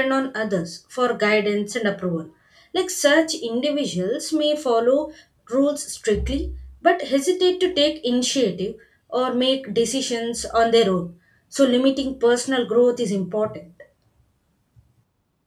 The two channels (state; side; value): identical; both; correlation 1.00